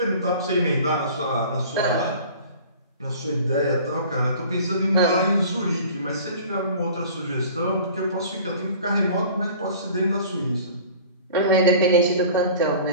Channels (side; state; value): both; inverted; correlation -0.44